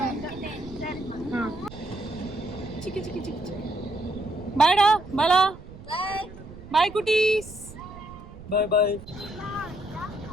இல்லை. சிக்கி சிக்கி சிக்கி. பாய்டா பாலா. பாய் குட்டீஸ். பாய் பாய்.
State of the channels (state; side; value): noise; right; rumble, 16 dB below the sound